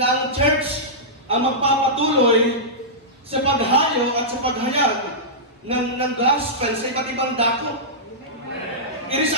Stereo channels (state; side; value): normal; both; correlation -0.14